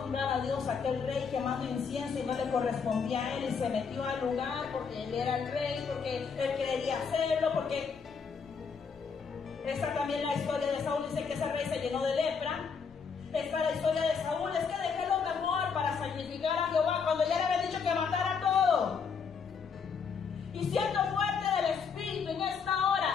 honrar a Dios, aquel rey quemando incienso y no le correspondía a él y se metió al lugar porque él era el rey, porque él quería hacerlo, porque esta también la historia de Saúl dice que ese rey se llenó de lepra? Esta es la historia de Saúl, es que dejé lo mejor cuando ya le había dicho que matara todo. Y siendo fuerte del Espíritu en esta hora,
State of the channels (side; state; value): right; quieter; 5.8 dB